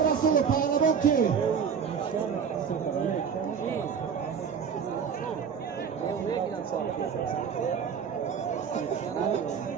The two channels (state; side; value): quieter; left; 6.9 dB